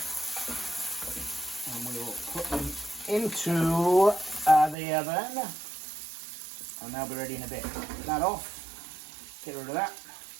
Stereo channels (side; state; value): left; drops out; at 4.8 s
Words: And we will put them into the oven. And they'll be ready in a bit. Get that off. Get rid of that.